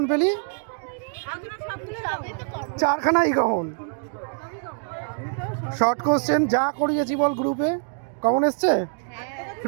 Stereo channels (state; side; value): silent; left; 61 dB below the other